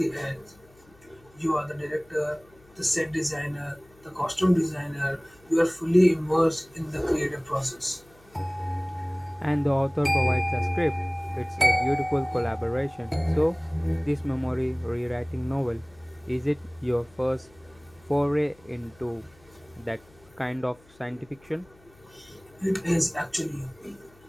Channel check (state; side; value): noise; left; hum, 28 dB below the sound